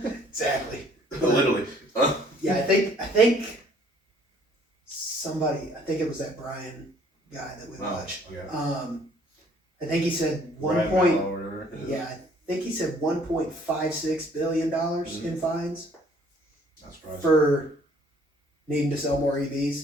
Exactly. Literally. Yeah, I think it was that Brian guy that we watched. Okay. I think he said I think he said $1.56 billion in fines. That's surprising. For needing to sell more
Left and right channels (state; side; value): normal; both; correlation 0.59